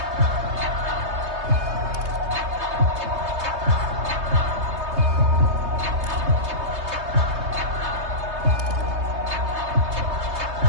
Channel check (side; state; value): left; late; 3.2 ms